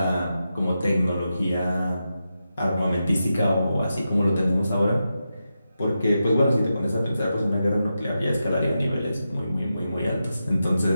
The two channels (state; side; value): inverted; both; correlation -0.89